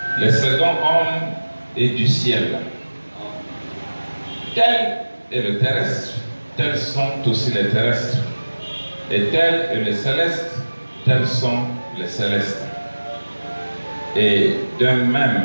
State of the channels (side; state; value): both; inverted; correlation -1.00